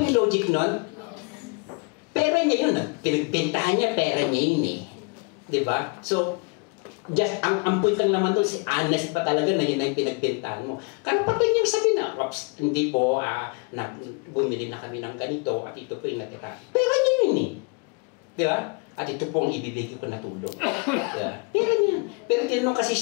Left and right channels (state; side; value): quieter; right; 31.8 dB